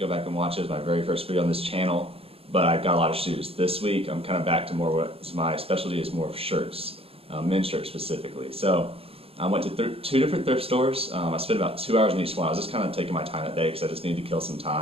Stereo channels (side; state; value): left; late; 0.28 ms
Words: go back and watch it. It was my very first video on this channel, but I got a lot of shoes. This week I'm kind of back to more what my specialty is, more of shirts, men's shirts specifically. So I went to two different thrift stores. I spent about 2 hours in each one. I was just kind of taking my time that day because I just needed to kill some